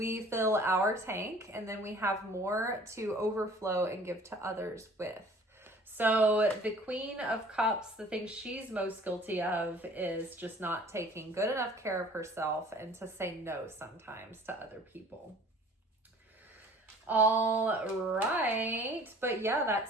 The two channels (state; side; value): normal; both; correlation 0.50